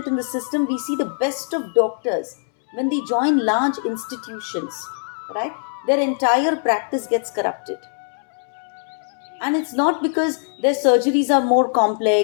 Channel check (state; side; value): silent; right; 64 dB below the other